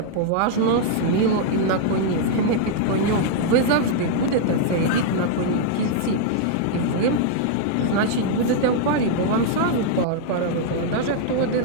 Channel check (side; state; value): both; different; correlation 0.00